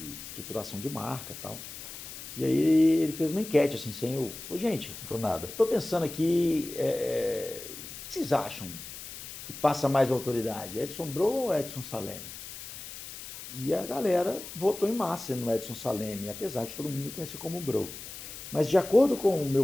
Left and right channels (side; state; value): left; noise; hiss, 12 dB below the sound